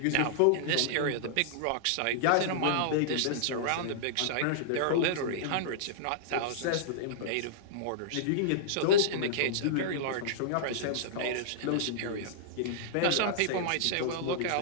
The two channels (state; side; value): different; both; correlation -0.02